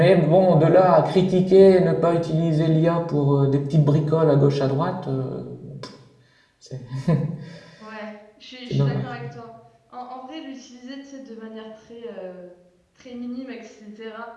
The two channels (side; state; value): both; identical; correlation 1.00